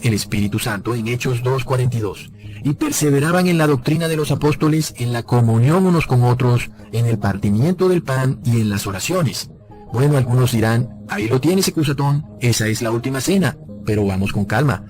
el Espíritu Santo en Hechos 2:42. Y perseveraban en la doctrina de los apóstoles, en la comunión unos con otros, en el partimiento del pan y en las oraciones. Bueno, algunos dirán, ahí lo tienes, Ecusatón, esa es la última cena. Pero vamos con calma,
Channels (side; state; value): both; identical; correlation 1.00